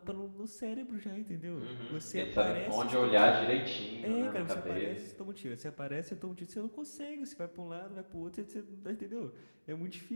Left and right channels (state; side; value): inverted; both; correlation -1.00